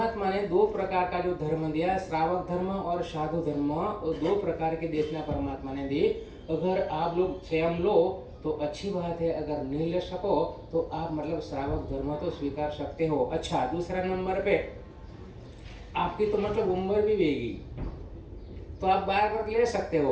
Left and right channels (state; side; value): identical; both; correlation 1.00